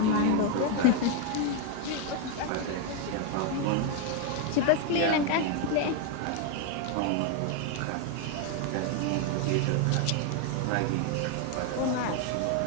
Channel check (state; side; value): different; both; correlation 0.01